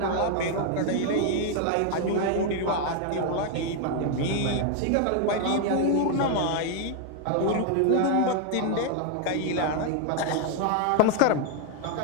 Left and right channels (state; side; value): different; both; correlation 0.00